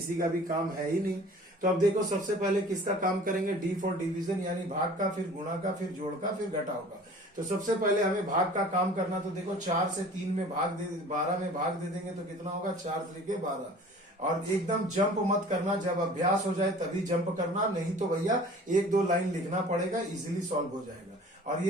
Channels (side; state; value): both; normal; correlation 0.46